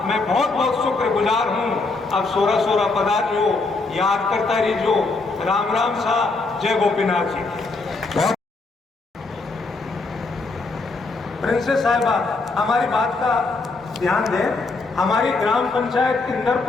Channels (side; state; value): right; quieter; 3.7 dB